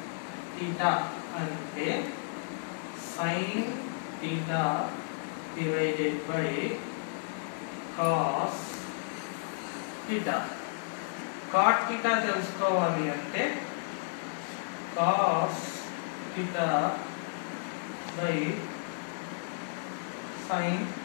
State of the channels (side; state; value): right; silent; digital silence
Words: theta అంటే sin theta divided by cos theta. cot theta తెలుసుకోవాలి అంటే cos theta by sin